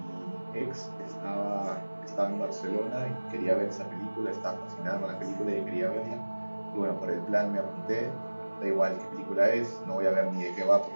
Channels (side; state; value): both; inverted; correlation -1.00